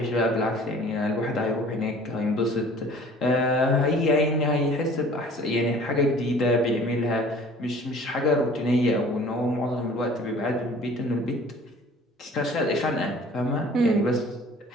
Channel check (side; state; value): both; normal; correlation 0.49